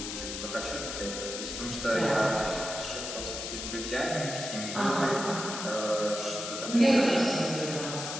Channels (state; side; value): noise; left; hiss, 6 dB below the sound